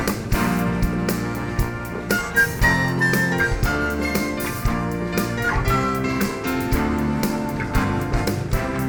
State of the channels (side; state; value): both; identical; correlation 1.00